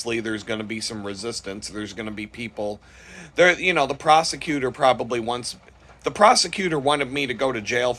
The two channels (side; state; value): both; identical; correlation 1.00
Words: there's going to be some resistance. There's going to be people there. The prosecutor wanted me to go to jail